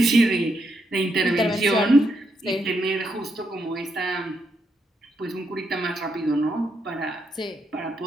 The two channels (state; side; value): normal; both; correlation 0.80